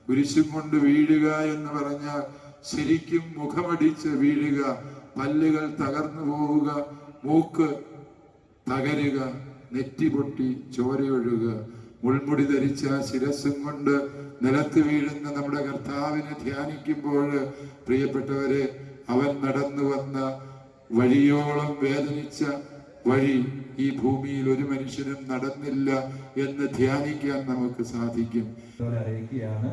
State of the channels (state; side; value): identical; both; correlation 1.00